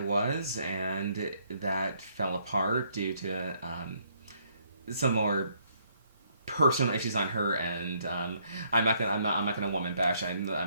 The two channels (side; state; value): both; inverted; correlation -0.70